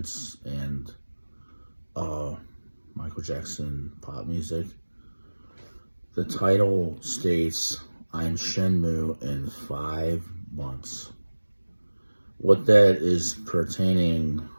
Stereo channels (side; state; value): both; inverted; correlation -1.00